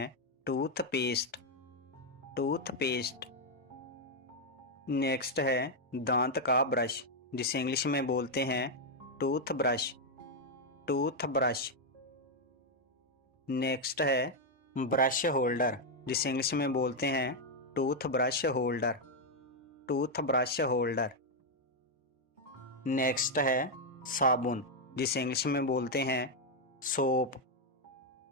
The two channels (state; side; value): normal; both; correlation 0.01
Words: टूथपेस्ट। टूथपेस्ट। नेक्स्ट है दांत का ब्रश, जिसे इंग्लिश में बोलते हैं टूथब्रश। टूथब्रश। नेक्स्ट है ब्रश होल्डर, जिसे इंग्लिश में बोलते हैं toothbrush holder. Toothbrush holder. Next है साबुन, जिसे इंग्लिश में बोलते हैं सोप।